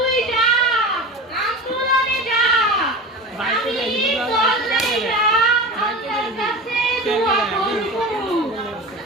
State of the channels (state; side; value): normal; both; correlation 0.31